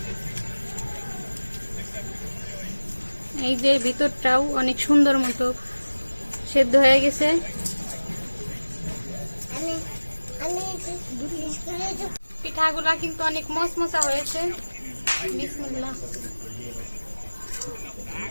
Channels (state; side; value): inverted; both; correlation -1.00